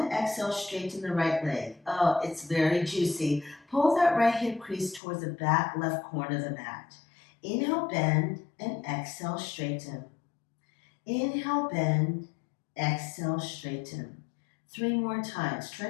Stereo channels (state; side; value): drops out; right; at 5.0 s